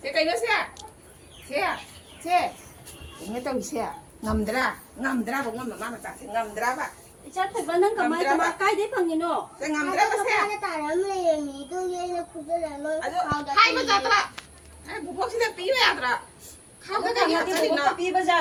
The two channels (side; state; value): both; identical; correlation 1.00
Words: Sẽ cái đó sẽ. Nghe tao sẽ ngầm dra cũng ngầm mà ta sẽ ngầm dra ba. Ija pa ba nang kamay to ba kai de phang ni no. Sẽ ngầm dra ba sẽ. Para taram le mi tu ye na kudo la mo. Hai mà ra tra. Ai bu bốc sẽ tí về tra. Khao cái gì 나한테 vậy 뭐가 nó.